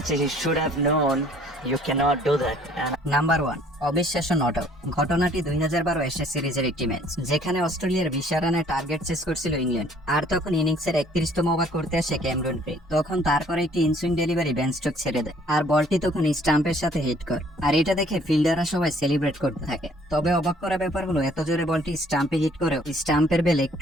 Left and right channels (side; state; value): both; normal; correlation 0.59